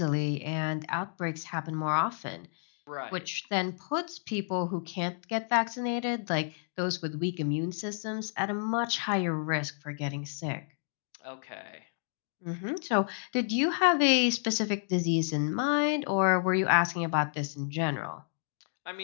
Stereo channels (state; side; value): silent; right; digital silence